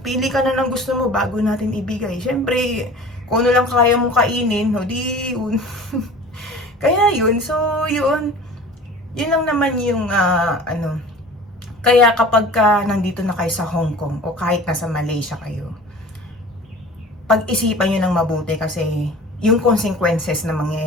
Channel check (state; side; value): normal; both; correlation 0.41